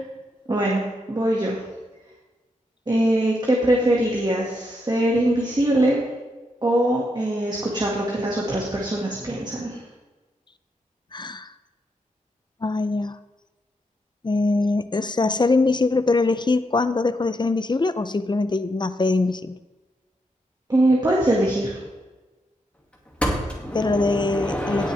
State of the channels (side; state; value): both; normal; correlation 0.80